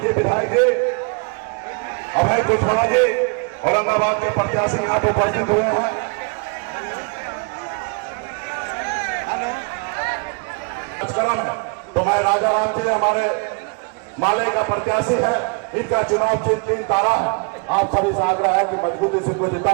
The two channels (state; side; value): quieter; left; 34.3 dB